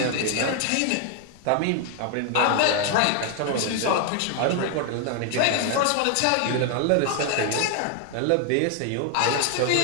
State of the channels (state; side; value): different; both; correlation 0.00